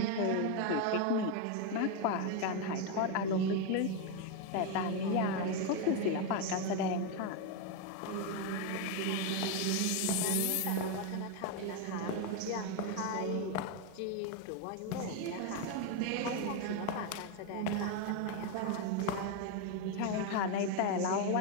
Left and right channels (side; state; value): both; different; correlation 0.02